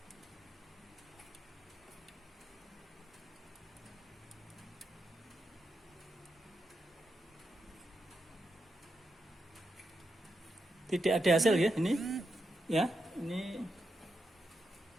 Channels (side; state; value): both; normal; correlation 0.85